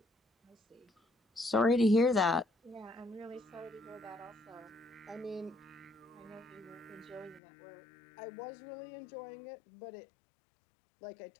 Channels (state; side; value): drops out; right; at 7.4 s